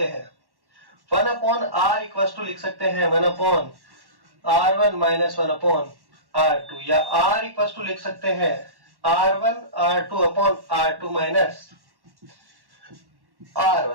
हैं, 1/R इक्वल टू लिख सकते हैं 1/R1 माइनस 1/R2, या R इक्वल टू लिख सकते हैं R1/R2 माइनस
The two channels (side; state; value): left; late; 1.1 ms